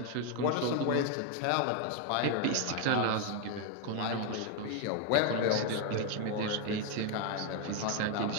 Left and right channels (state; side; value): different; both; correlation 0.01